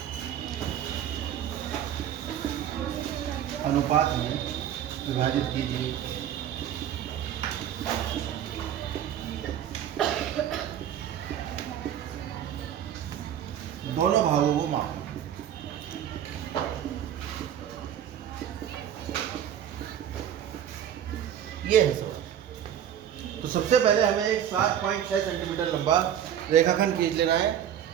अनुपात में विभाजित कीजिए। दोनों भागों को मापें। ये है सर। तो सबसे पहले हमें एक 7.6 सेंटीमीटर लंबा रेखाखंड खींच लेना है।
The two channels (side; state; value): left; quieter; 10.1 dB